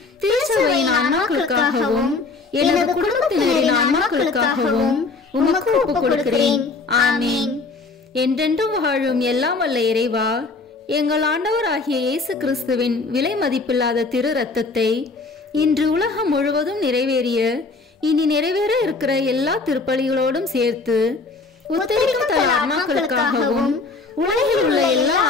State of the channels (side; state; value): right; quieter; 3.9 dB